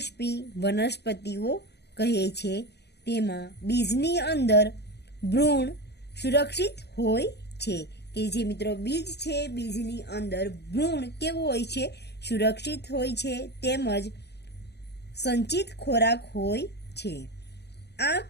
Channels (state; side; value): late; right; 0.49 ms